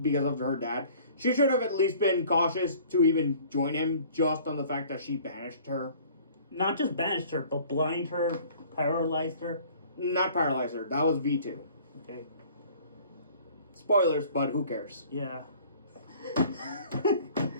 of her dad. She should have at least been cautious to even join him just on the fact that she banished her. Not just banished her, but blind her, paralyzed her. Not paralyzed her. That was V2. Okay. Spoilers, but who cares? Yeah.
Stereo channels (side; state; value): both; inverted; correlation -0.51